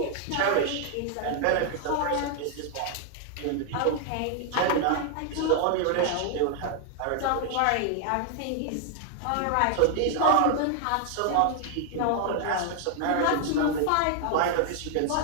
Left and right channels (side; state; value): both; different; correlation 0.00